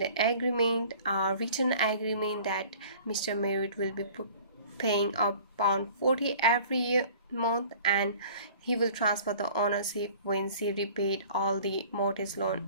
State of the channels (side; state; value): both; inverted; correlation -0.47